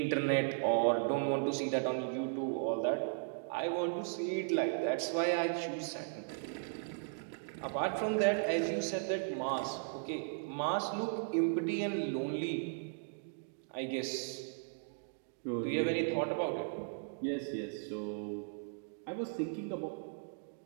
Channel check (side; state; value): left; silent; digital silence